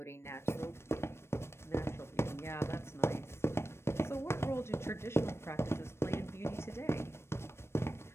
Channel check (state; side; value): late; right; 0.12 ms